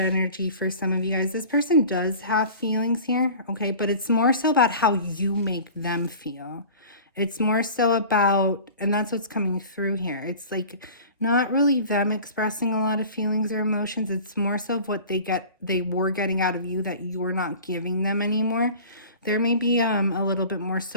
for some of you guys. This person does have feelings here, okay? But it's more so about how you make them feel. It's more so about, and that's what's coming through here. It's like not really them expressing a lot of feelings or emotions. It's more so of what they were getting out of you that you're not giving them anymore. There may be a little bit more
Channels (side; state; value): both; inverted; correlation -0.41